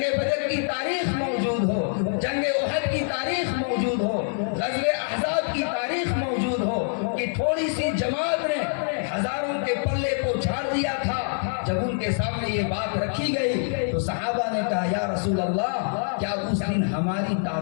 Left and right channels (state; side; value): silent; right; digital silence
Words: بدر کی تاریخ موجود ہو، جنگ احد کی تاریخ موجود ہو، غزوہ احزاب کی تاریخ موجود ہو کہ تھوڑی سی جماعت نے ہزاروں کے پلے کو جھاڑ دیا تھا۔ جب ان کے سامنے یہ بات رکھی گئی تو صحابہ نے کہا یا رسول اللہ کیا اس دن ہماری